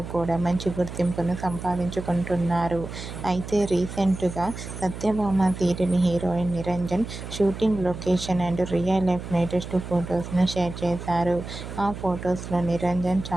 కూడా మంచి గుర్తింపును సంపాదించుకుంటున్నారు. అయితే రీసెంట్గా Satyabhama serial heroine Niranjan shooting location and real life latest ఫొటోస్ను షేర్ చేశారు. ఆ ఫొటోస్లో నిరంజన్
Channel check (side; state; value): right; noise; hum, 10 dB below the sound